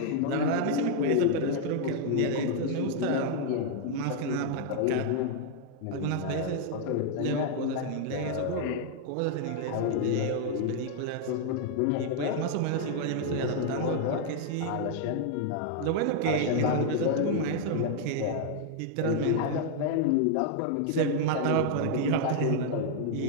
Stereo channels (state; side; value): different; both; correlation 0.00